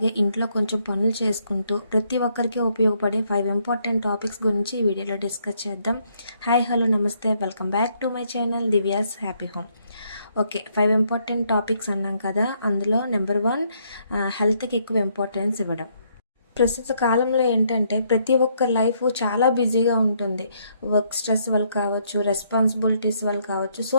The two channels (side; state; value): both; inverted; correlation -0.72